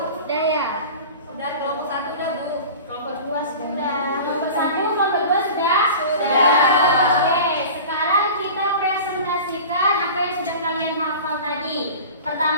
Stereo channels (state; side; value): inverted; both; correlation -0.37